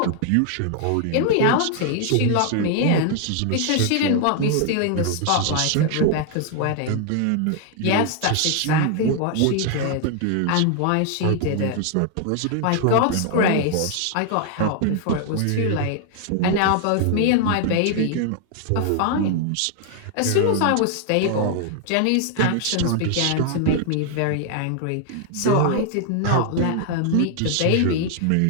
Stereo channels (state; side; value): different; both; correlation 0.00